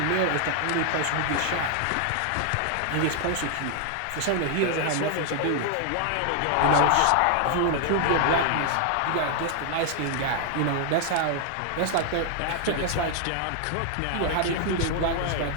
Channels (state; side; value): different; both; correlation 0.00